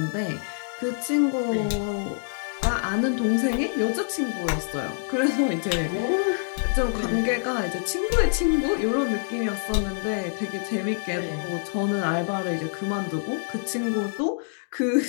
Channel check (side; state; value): right; silent; digital silence